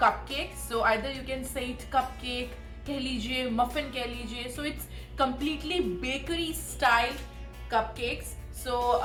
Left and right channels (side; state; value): both; identical; correlation 1.00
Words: So either you can say it cupcake, कह लीजिए, muffin कह लीजिए. So it's completely bakery style cupcakes. So